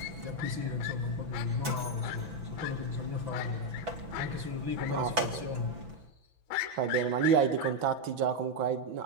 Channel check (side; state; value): left; late; 6.0 ms